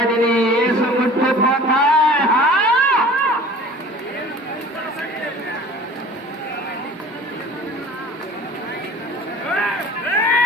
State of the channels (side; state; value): both; normal; correlation 0.44